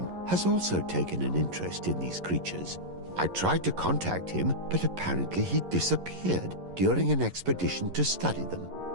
has also taken an interest in these creatures. I tried to contact him, but apparently he disappeared during an expedition to study them.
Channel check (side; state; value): left; late; 11 ms